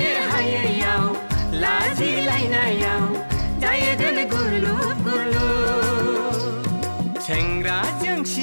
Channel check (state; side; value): inverted; both; correlation -1.00